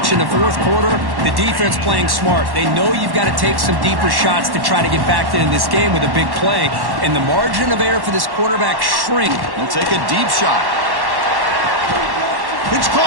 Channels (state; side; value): late; left; 1.1 ms